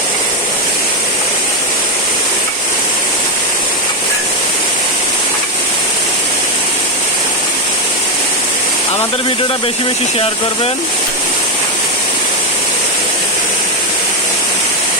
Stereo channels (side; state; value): both; normal; correlation 0.06